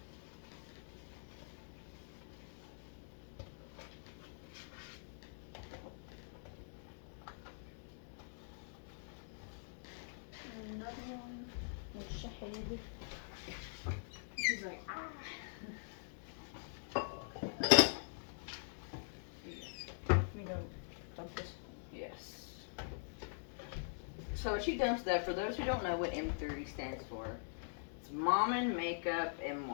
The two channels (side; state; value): right; silent; digital silence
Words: She's like, ah. We don't dump this. Yes. So she dumps that. For those who don't know what M30 stands for, it's Mom and Makeup and